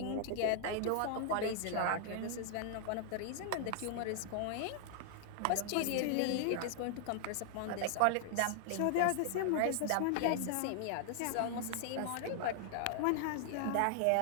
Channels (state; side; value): different; both; correlation 0.00